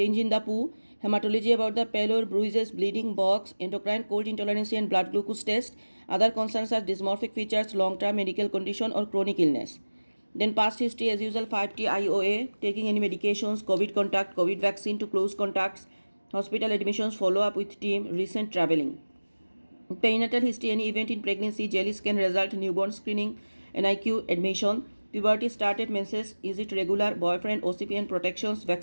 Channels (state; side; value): inverted; both; correlation -1.00